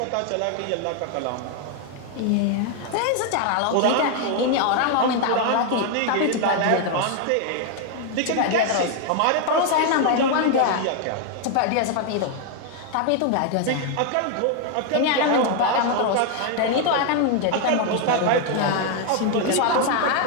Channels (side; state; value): both; different; correlation 0.00